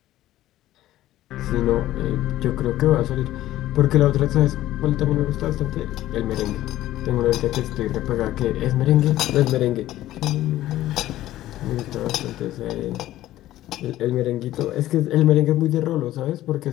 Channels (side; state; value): right; quieter; 14.5 dB